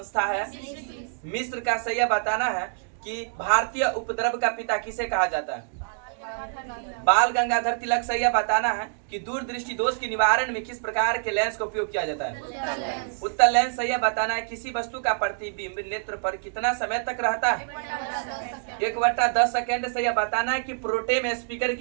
है? मिस्र का। सही है, बताना है कि भारतीय उपद्रव का पिता किसे कहा जाता है? बाल गंगाधर तिलक। सही है, बताना है कि दूरदृष्टि दोष के निवारण में किस प्रकार के लेंस का उपयोग किया जाता है? उत्तल लेंस। सही है, बताना है किसी वस्तु का प्रतिबिंब नेत्र पर कितना समय तक रहता है? 1/10 सेकेंड। सही है, बताना है कि प्रोटेम स्पीकर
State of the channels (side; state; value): left; silent; digital silence